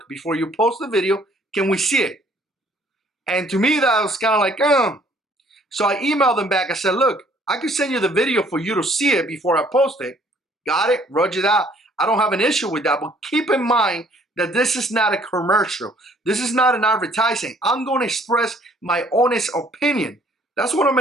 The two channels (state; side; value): normal; both; correlation 0.60